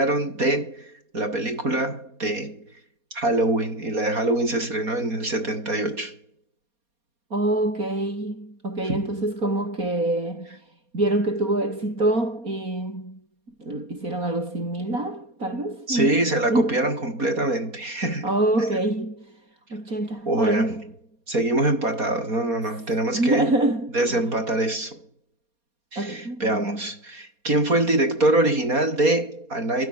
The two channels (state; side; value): late; left; 4.2 ms